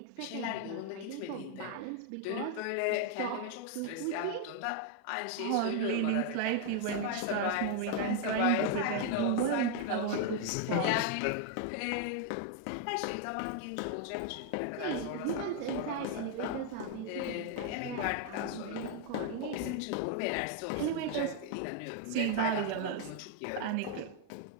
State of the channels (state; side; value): different; both; correlation 0.00